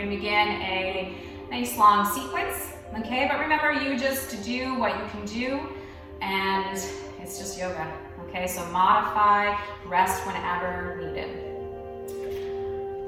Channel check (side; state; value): both; identical; correlation 1.00